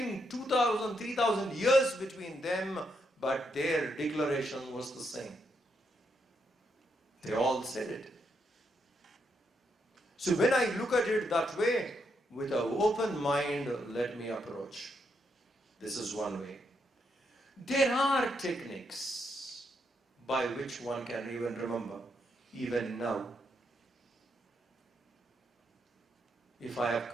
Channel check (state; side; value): normal; both; correlation 0.78